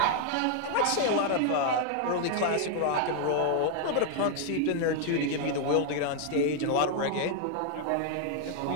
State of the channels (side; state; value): both; different; correlation 0.00